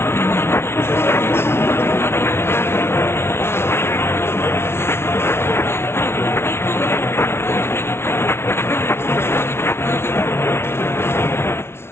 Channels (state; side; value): late; right; 0.12 ms